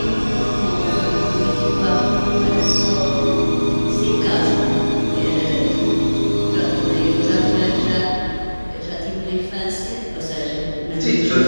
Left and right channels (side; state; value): both; inverted; correlation -1.00